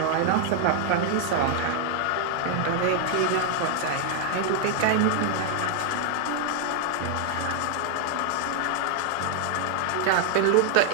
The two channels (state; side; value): different; both; correlation 0.00